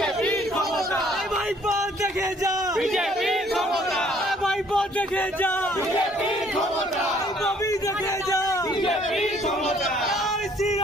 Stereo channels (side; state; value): both; normal; correlation 0.61